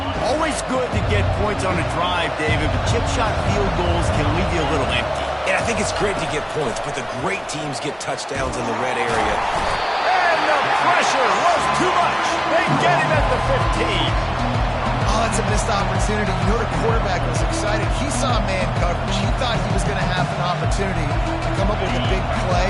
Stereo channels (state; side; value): identical; both; correlation 1.00